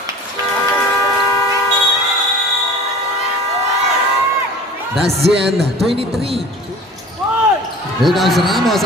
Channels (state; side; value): normal; both; correlation 0.42